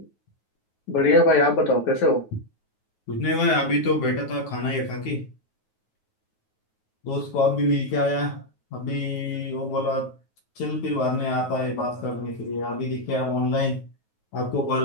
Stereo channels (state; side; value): late; right; 9.4 ms